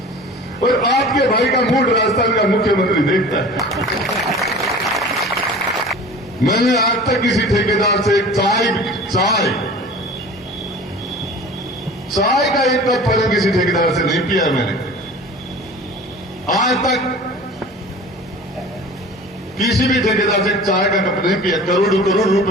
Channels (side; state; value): both; normal; correlation 0.40